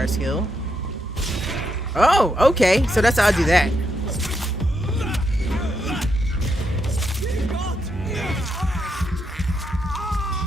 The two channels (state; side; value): normal; both; correlation 0.80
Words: skill. Oh, okay. So that's how I do that.